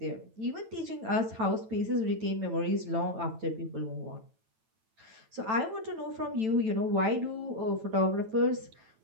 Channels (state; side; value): late; left; 9.1 ms